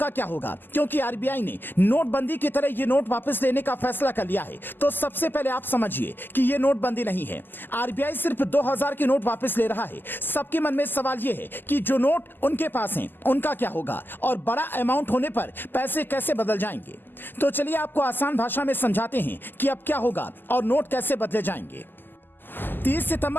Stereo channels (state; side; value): late; right; 0.092 ms